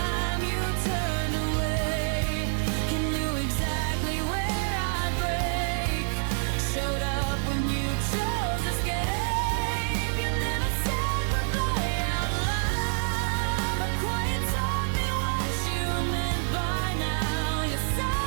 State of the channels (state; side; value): silent; left; 60 dB below the other